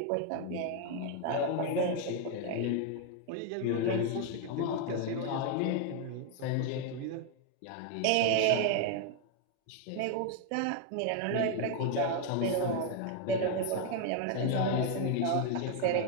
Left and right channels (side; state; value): both; different; correlation 0.01